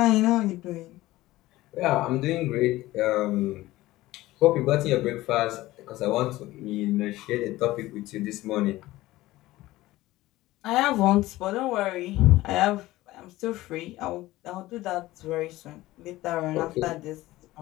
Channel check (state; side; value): quieter; right; 17.4 dB